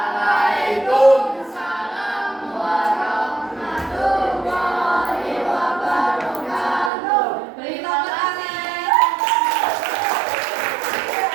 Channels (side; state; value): left; drops out; at 6.9 s